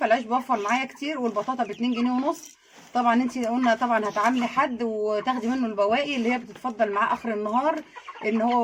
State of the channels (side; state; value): both; identical; correlation 1.00